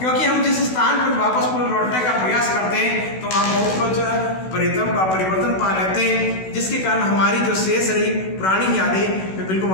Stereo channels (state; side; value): late; right; 16 ms